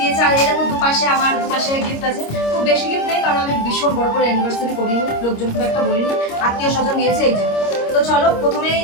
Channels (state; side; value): late; right; 26 ms